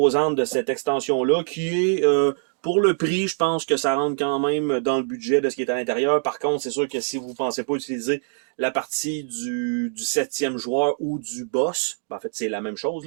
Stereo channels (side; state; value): left; silent; digital silence